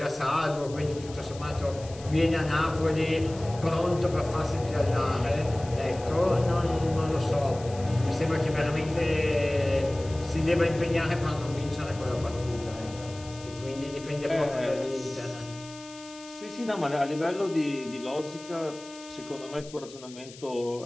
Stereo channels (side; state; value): left; noise; hiss, 18 dB below the sound